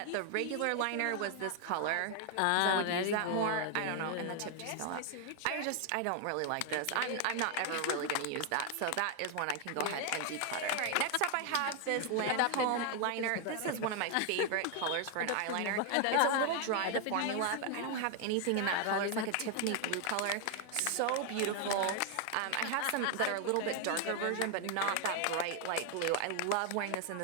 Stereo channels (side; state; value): both; different; correlation 0.00